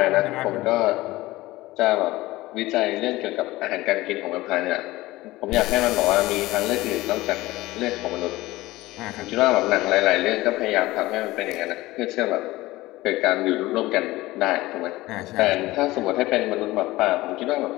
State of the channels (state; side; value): quieter; right; 18.6 dB